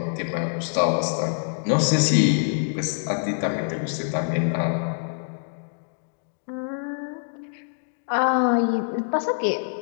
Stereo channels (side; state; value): right; silent; digital silence